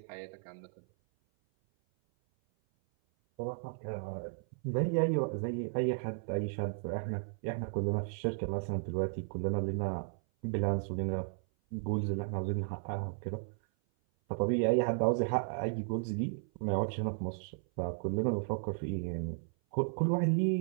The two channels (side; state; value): left; silent; 55 dB below the other